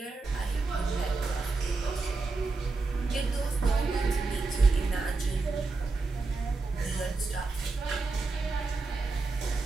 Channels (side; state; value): left; quieter; 3.8 dB